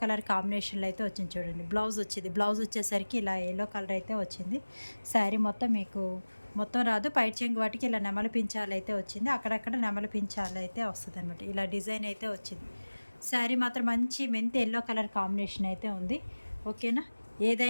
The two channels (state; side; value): inverted; both; correlation -1.00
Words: కలర్ కాంబినేషన్‌లో అయితే వచ్చింది చూడండి. బ్లౌజ్ వచ్చింది. బ్లౌజ్ వచ్చేసరికి ఇలా యెల్లో కలర్ అయితే వచ్చింది. శారీ మొత్తం మీకు మొత్తం రాదు. పైట చెంగు వాటికి ఇలా నెమలి పించాలు అయితే వచ్చింది. అక్కడక్కడ నెమలి పించాలు అయితే వస్తదనమాట. ఇలా డిజైన్ అయితే వచ్చింది. శారీ మాత్రం మంచి మెంతి యెల్లో కలర్ కాంబినేషన్ అయితే ఉంది. ఓకేనా?